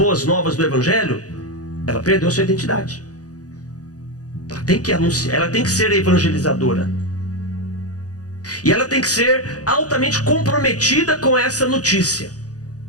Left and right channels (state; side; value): late; right; 0.67 ms